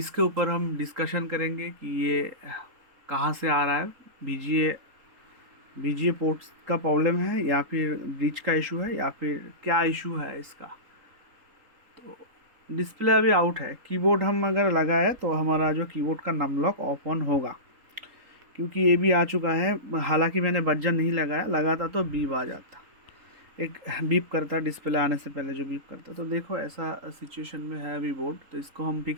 ऊपर हम डिस्कशन करेंगे कि ये कहाँ से आ रहा है। बीजीए पोर्ट्स का प्रॉब्लम है या फिर ब्रिज का इशू है या फिर क्या इशू है इसका। तो डिस्प्ले अभी आउट है। कीबोर्ड हम अगर लगाए तो हमारा जो कीबोर्ड का नम लॉक ऑफ ऑन होगा, क्योंकि ये भी आ चुका है। हालांकि मैंने बजर नहीं लगाता तो बीप आ जाता, एक बीप करता डिस्प्ले आने से पहले, जो बीप करता। तो देखो ऐसा सिचुएशन में है अभी बोर्ड, तो इसको हम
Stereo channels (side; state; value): left; late; 3.8 ms